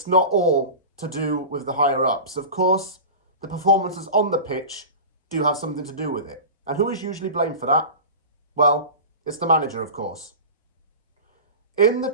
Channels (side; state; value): both; inverted; correlation -0.31